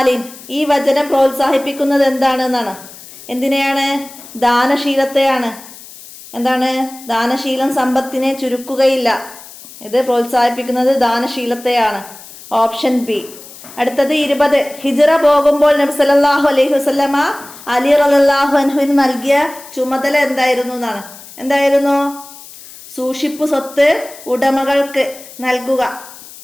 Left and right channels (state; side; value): noise; left; hiss, 18 dB below the sound